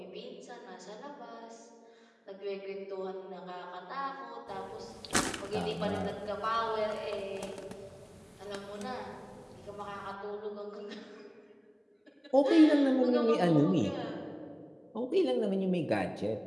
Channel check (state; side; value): identical; both; correlation 1.00